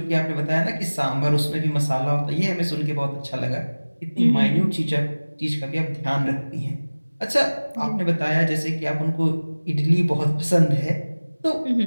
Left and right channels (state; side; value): inverted; both; correlation -1.00